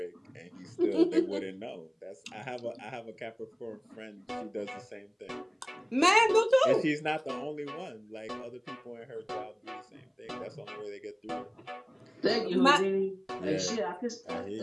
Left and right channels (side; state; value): both; identical; correlation 1.00